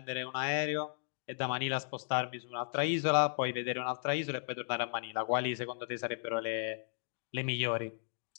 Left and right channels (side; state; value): right; silent; digital silence